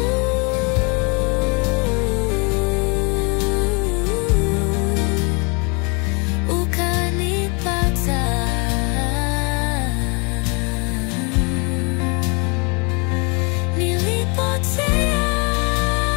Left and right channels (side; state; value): right; quieter; 32.5 dB